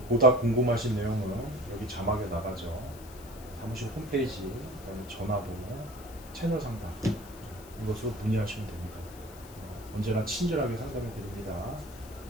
보다 궁금하신 내용은 여기 자막에 나가죠. 사무실 홈페이지, 그다음에 전화번호, 채널 상담 이것으로 문의하시면 됩니다. 언제나 친절하게 상담해 드립니다.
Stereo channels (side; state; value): left; noise; hiss, 19 dB below the sound